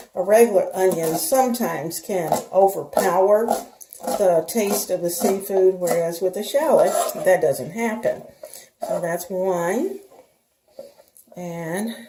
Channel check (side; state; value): both; identical; correlation 1.00